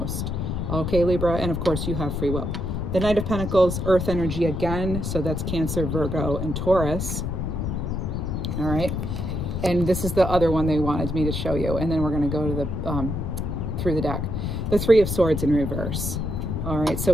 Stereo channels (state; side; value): noise; left; rumble, 2 dB below the sound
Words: Okay, Libra, and of course you have free will. The Knight of Pentacles, earth energy again, so that's Cancer, Virgo, and Taurus. All right, and this is the other one they wanted me to show you, and then we're going to go to the through the deck. The Three of Swords in reverse. All right, so